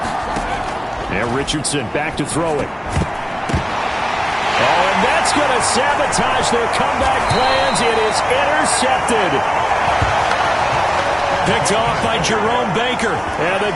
Now Richardson back to throw it. Oh, and that's going to sabotage their comeback plans. It is intercepted. Picked off by Jerome Baker. And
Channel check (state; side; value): identical; both; correlation 1.00